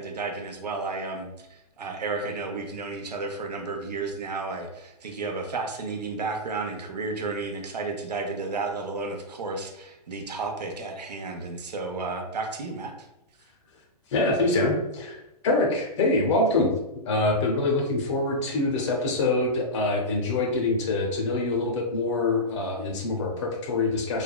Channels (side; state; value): both; normal; correlation -0.11